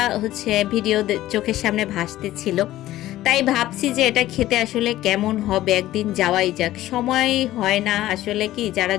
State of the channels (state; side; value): quieter; right; 14.9 dB